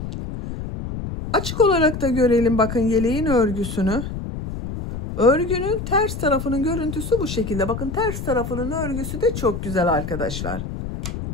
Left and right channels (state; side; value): noise; left; rumble, 7 dB below the sound